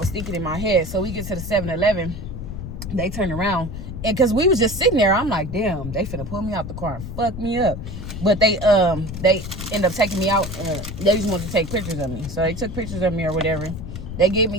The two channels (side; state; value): left; noise; rumble, 8 dB below the sound